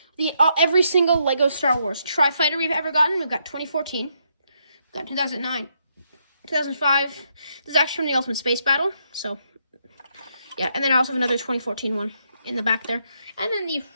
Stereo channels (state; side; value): inverted; both; correlation -0.77